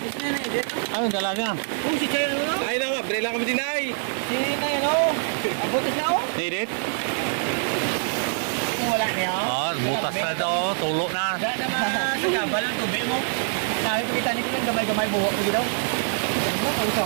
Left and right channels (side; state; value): left; silent; digital silence